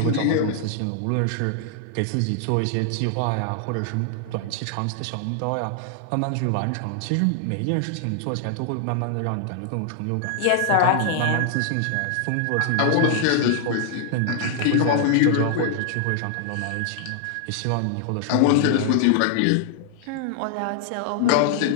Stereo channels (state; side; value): different; both; correlation 0.00